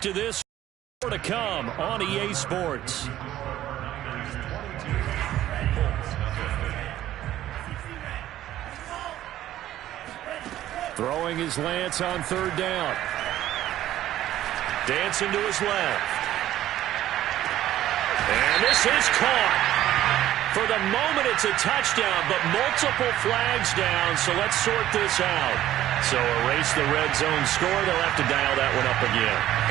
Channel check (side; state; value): left; quieter; 13.3 dB